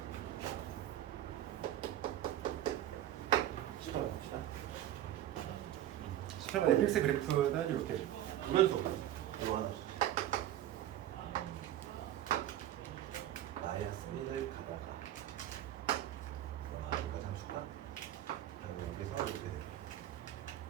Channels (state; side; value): quieter; left; 12.5 dB